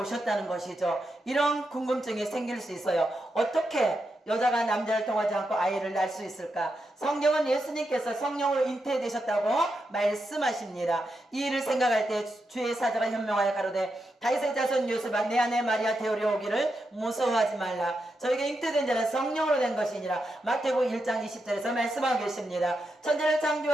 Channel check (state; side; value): normal; both; correlation 0.85